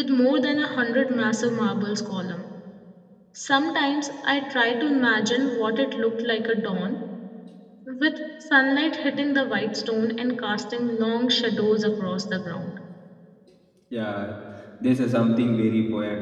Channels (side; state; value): both; identical; correlation 1.00